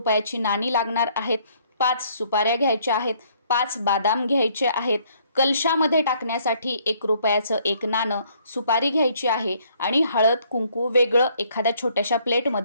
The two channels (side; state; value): both; inverted; correlation -0.65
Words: नाणी लागणार आहेत, 5 सुपाऱ्या घ्यायच्या आहेत, 5 बदाम घ्यायचे आहेत, कलशामध्ये टाकण्यासाठी 1 रुपयाचं 1 नाणं, सुपारी घ्यायची आहे आणि हळद कुंकू वेगळं एखाद्या छोट्याशा